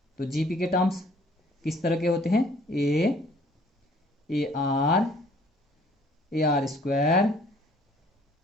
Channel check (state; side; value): normal; both; correlation 0.58